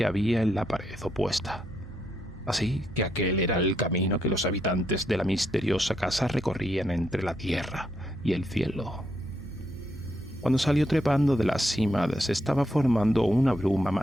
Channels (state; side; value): normal; both; correlation 0.78